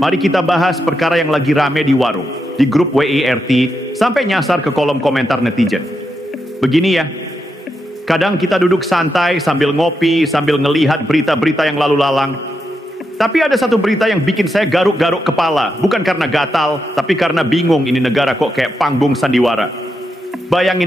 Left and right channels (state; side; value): normal; both; correlation 0.84